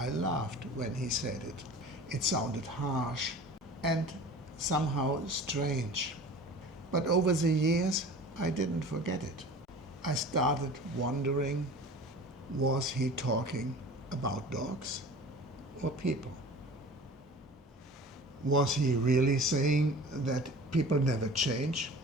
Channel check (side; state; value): both; normal; correlation 0.40